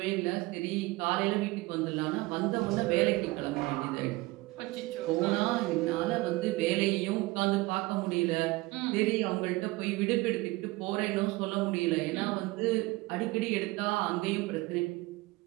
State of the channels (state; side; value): quieter; left; 21.5 dB